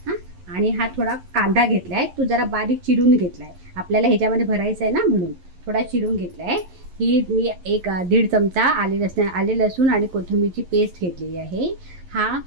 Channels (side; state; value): left; late; 11 ms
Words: आणि हा थोडा कांदा घेतला आहे, तो जरा बारीक चिरून घेतला आहे. आपल्याला ह्याच्यामध्ये भरायचं आहे ना, म्हणून थोडा चिरून घेतला आहे. ही मी 1-1.5 चमचा आले लसूण आणि कोथिंबीरची पेस्ट घेतलेली आहे.